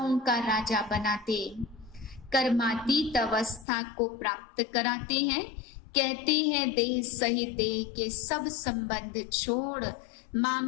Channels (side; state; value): right; drops out; at 3.7 s